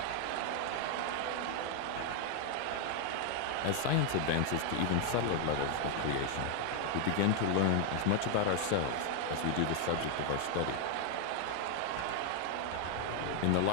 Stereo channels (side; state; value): both; different; correlation 0.00